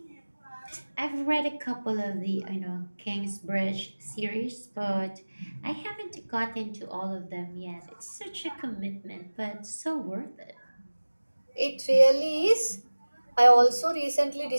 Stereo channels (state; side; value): inverted; both; correlation -1.00